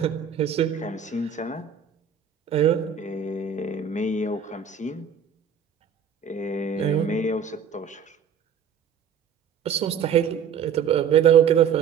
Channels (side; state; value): left; quieter; 7.2 dB